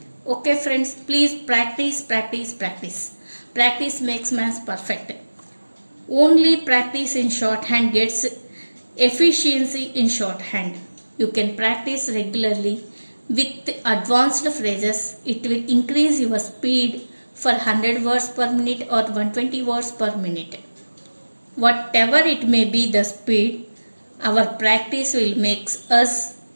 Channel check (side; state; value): both; inverted; correlation -1.00